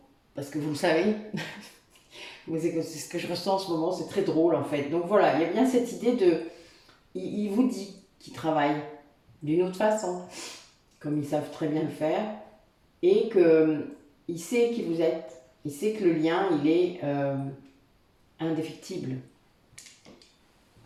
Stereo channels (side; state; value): both; identical; correlation 1.00